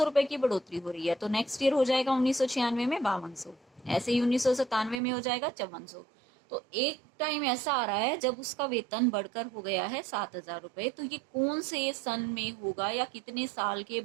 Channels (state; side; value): drops out; left; at 5.0 s